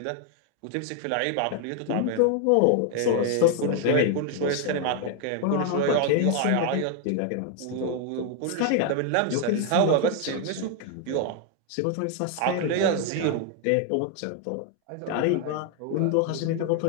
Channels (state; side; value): different; both; correlation 0.01